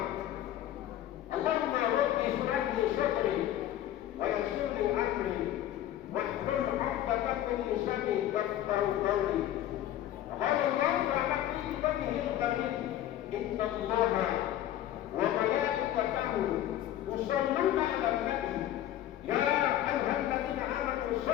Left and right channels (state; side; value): quieter; right; 12.6 dB